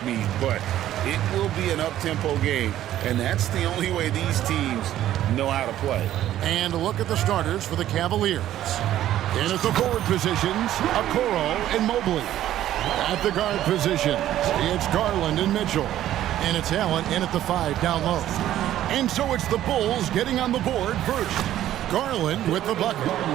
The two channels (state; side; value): quieter; left; 12.7 dB